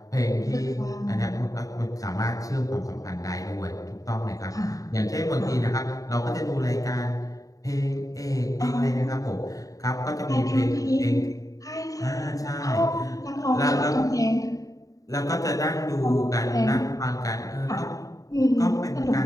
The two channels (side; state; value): right; late; 0.17 ms